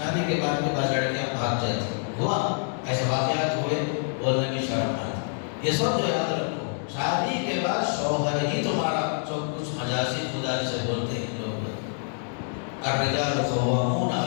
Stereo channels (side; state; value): right; silent; 60 dB below the other